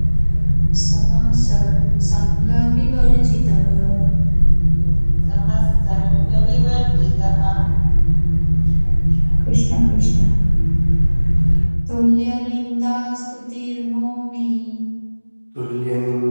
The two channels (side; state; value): both; inverted; correlation -1.00